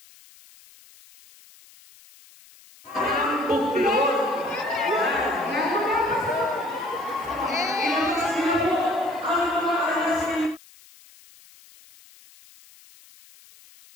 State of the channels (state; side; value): noise; left; hiss, 25 dB below the sound